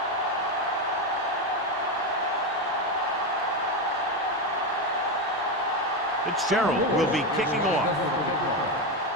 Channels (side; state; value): both; normal; correlation 0.12